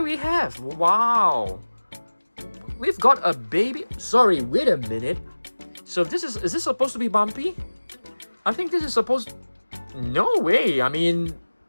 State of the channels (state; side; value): inverted; both; correlation -1.00